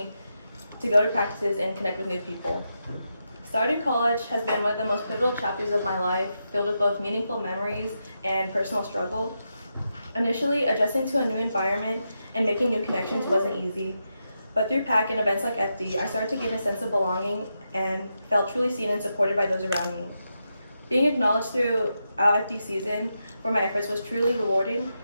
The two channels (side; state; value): both; inverted; correlation -0.86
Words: to go to practices and connect with new people. Starting college has been one of the most pivotal chapters of my life, filled with both meaningful memories and personal struggle. Initially, adjusting to a new environment and making new connections wasn't easy, but through PAC and events like FD, I started to gain a sense of belonging and felt truly seen and supported by those around me. Being acknowledged throughout FD season for my efforts was truly rewarding